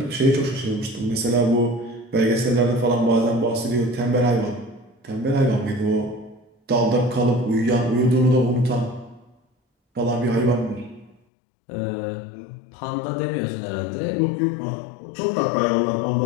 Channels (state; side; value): drops out; right; at 11.2 s